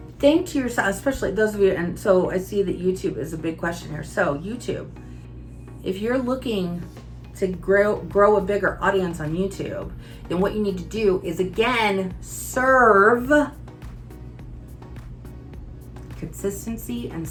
think to yourself, especially those of you, and so I see that YouTube is a big question here. So YouTube, if you're looking to grow a bigger audience on YouTube, then what you need to do is, again, serve. Consistency and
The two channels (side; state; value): both; identical; correlation 1.00